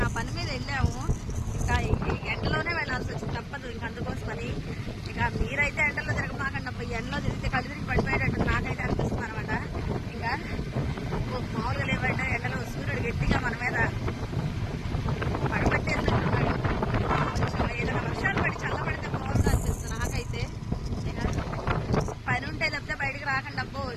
ఆ పని మీద వెళ్ళాము. ఇంకా ఎండలోనే వెళ్ళాల్సి వచ్చింది, తప్పదు. ఇంకా అందుకోసమని ఇక మీరైతే ఎండలో తిరగమాకండి అబ్బా. ఎండలో తిరిగితే కళ్ళు తిరిగి పడిపోయేటట్టు నాకైతే అనిపిస్తుంది అనమాట. ఇంకా మామూలుగా లేవంటే ఎండలో సూర్యుడు గట్టిగా మన మీద పడబట్టేసినట్టున్నాడు. కొంచెం ఏదైనా వర్షాలు పడి చల్లబడితే బాగుంది అనిపిస్తుంది నాకైతే. పని ఉంటే తప్పితే బయటకు రాకండి అబ్బో,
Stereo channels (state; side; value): identical; both; correlation 1.00